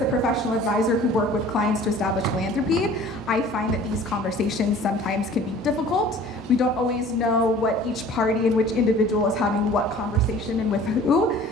a professional advisor who work with clients to establish philanthropy, I find that these conversations sometimes can be difficult. We don't always know what each party and which individual is having what conversation and with who.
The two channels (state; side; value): normal; both; correlation 0.47